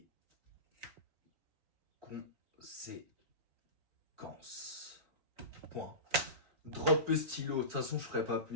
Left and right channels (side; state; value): left; late; 4.2 ms